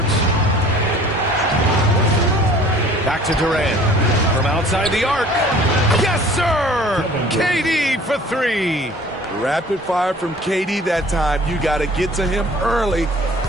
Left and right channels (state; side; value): normal; both; correlation 0.50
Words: Back to Durant. From outside the arc. Yes, sir! KD for 3. Rapid fire from KD that time. You got to get to him early.